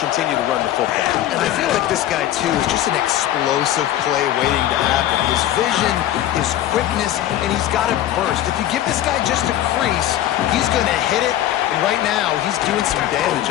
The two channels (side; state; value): right; quieter; 12.8 dB